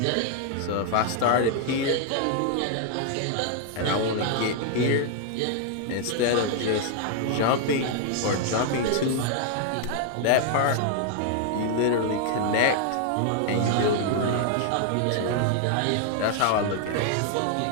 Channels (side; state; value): both; different; correlation 0.00